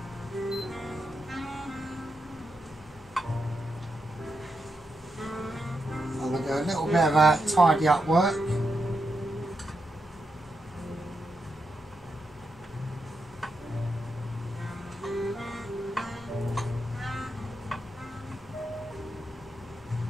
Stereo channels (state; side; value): normal; both; correlation 0.85